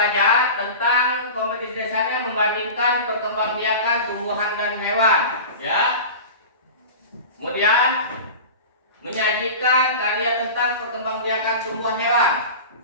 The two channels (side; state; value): both; inverted; correlation -0.33